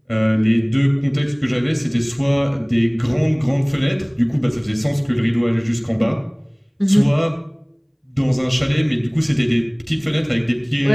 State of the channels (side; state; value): both; identical; correlation 1.00